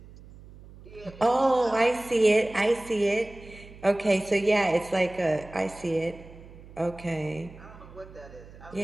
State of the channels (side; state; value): right; noise; hum, 19 dB below the sound